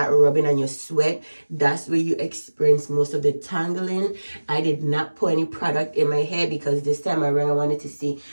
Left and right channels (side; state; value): both; inverted; correlation -1.00